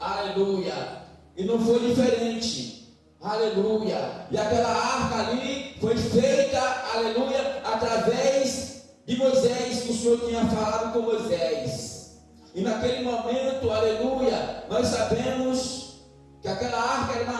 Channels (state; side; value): identical; both; correlation 1.00